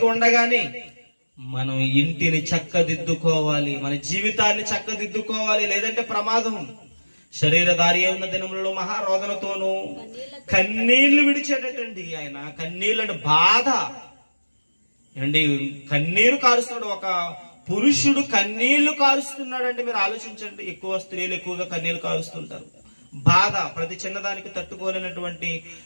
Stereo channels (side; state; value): both; inverted; correlation -1.00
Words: ఉండగానే మనం ఇంటిని చక్కదిద్దుకోవాలి, మన జీవితాన్ని చక్కదిద్దుకోవాలి, లేదంటే ప్రమాదం. శరీరధారి ఉన్న దినములలో మహారోదనతోనూ కన్నీళ్లు విడిచేటండి ఆయన. కన్నీళ్ళని బాధ అండి, కన్నీరు కారుస్తున్నాడు. ఒక పురుషుడు కన్నీళ్లు కారుస్తున్నాడంటే మీరు ఆలోచించండి. ఎక్కువ స్త్రీలు ఎక్కువగా కన్నీళ్లు కారుస్తుంటారు. బాధ, ప్రతి చిన్నదానికి తట్టుకోలేనటువంటి